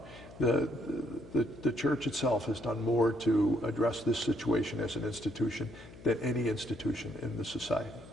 The church itself has done more to address this situation as an institution than any institution in the society.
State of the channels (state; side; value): noise; left; hum, 18 dB below the sound